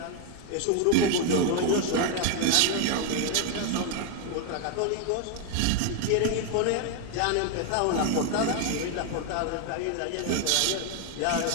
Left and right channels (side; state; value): both; different; correlation 0.01